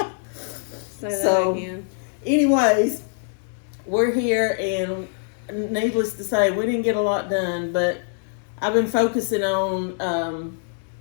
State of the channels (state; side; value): silent; right; 61 dB below the other